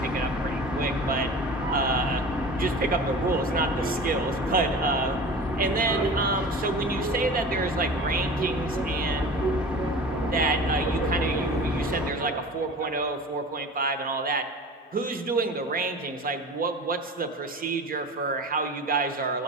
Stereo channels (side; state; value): both; normal; correlation 0.37